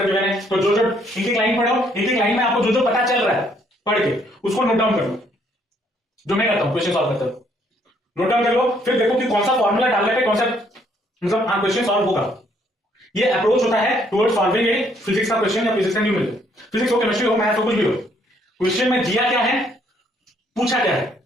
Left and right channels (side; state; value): both; normal; correlation 0.67